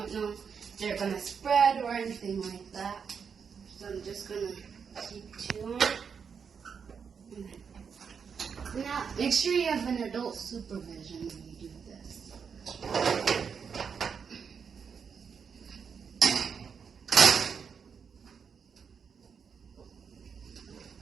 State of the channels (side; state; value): left; quieter; 6.5 dB